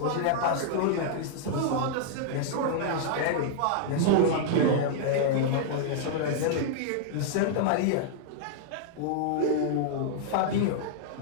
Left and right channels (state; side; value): different; both; correlation -0.01